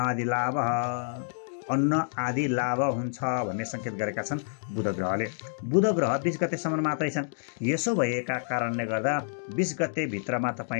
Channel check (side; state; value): right; silent; digital silence